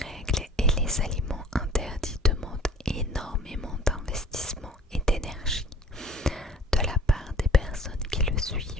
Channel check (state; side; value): normal; both; correlation 0.48